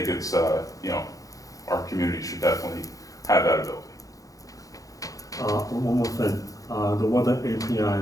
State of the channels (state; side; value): late; right; 0.17 ms